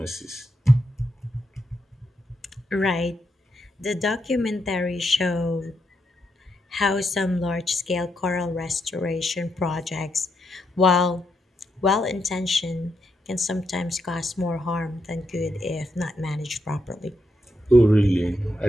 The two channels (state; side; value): normal; both; correlation 0.81